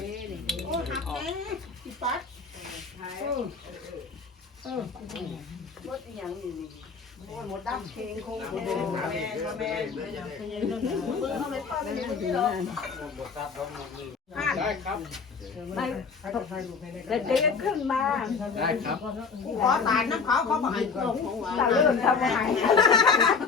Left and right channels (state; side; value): quieter; right; 5.3 dB